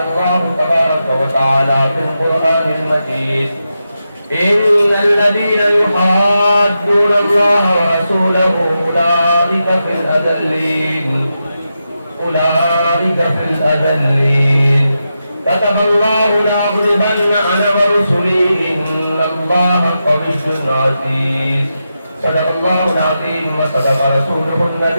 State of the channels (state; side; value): inverted; both; correlation -0.88